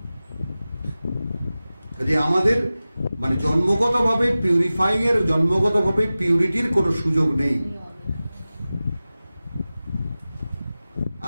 যদি আমাদের মানে জন্মগতভাবে পিউরিফাইং এর, জন্মগতভাবে পিউরিটির কোনো সুযোগ নেই।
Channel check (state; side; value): inverted; both; correlation -0.96